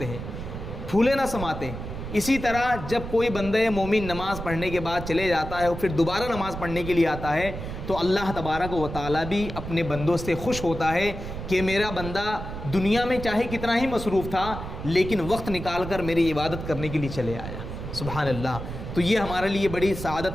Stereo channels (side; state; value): right; noise; rumble, 8 dB below the sound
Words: ہیں، پھولے نہ سماتے۔ اسی طرح جب کوئی بندہ مومن نماز پڑھنے کے بعد چلے جاتا ہے اور پھر دوبارہ نماز پڑھنے کے لیے آتا ہے تو اللہ تبارک و تعالیٰ بھی اپنے بندوں سے خوش ہوتا ہے کہ میرا بندہ دنیا میں چاہے کتنا ہی مصروف تھا لیکن وقت نکال کر میری عبادت کرنے کے لیے چلے آیا۔ سبحان اللہ، تو یہ ہمارے لیے بڑی سعادت